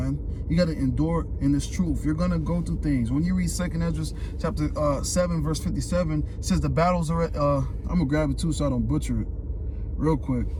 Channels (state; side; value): identical; both; correlation 1.00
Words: You got to endure in this truth. You're going to go through things. When you read 2nd Esdras, chapter 7, verse 57, it says the battles are, I'm going to grab it too so I don't butcher it real quick.